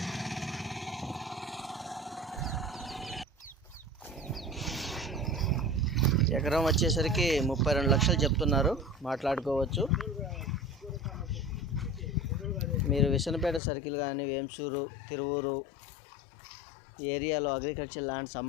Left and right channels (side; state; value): right; drops out; at 13.6 s